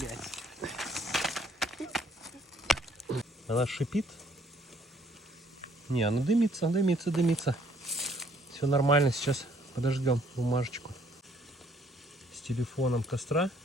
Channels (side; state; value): both; normal; correlation 0.64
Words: Она шипит. Не, она дымится, дымится, дымится. Все нормально, сейчас подождем бумажечку с телефоном костра.